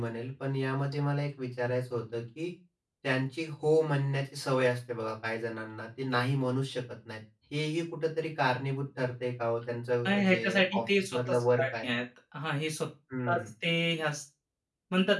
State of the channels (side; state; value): both; identical; correlation 1.00